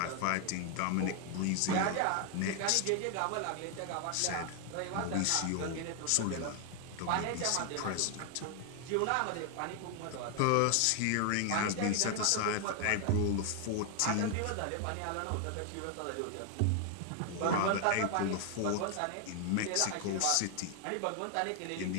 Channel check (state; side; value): different; both; correlation 0.00